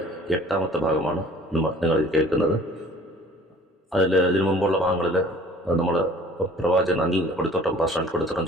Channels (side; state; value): both; normal; correlation 0.50